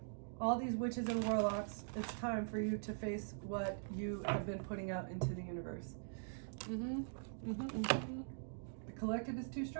all these witches and warlocks. It's time for you to face what you have been putting out into the universe. The collective is too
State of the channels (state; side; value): silent; left; digital silence